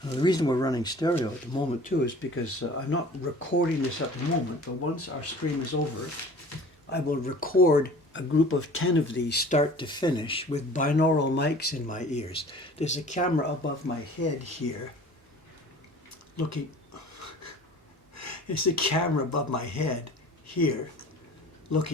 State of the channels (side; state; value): both; normal; correlation 0.45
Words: The reason we're running stereo at the moment too is because I'm not recording this at the moment, but once our stream is over, I will record a group of 10 of these start to finish with binaural mics in my ears. There's a camera above my head here looking, there's a camera above my head here